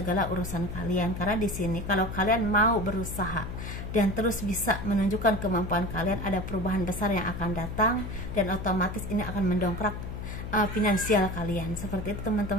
urusan kalian. Karena di sini kalau kalian mau berusaha dan terus bisa menunjukkan kemampuan kalian, ada perubahan besar yang akan datang dan otomatis ini akan mendongkrak finansial kalian, seperti itu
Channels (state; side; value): noise; left; hum, 7 dB below the sound